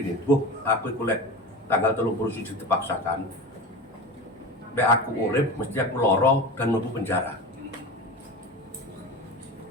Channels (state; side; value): normal; both; correlation 0.29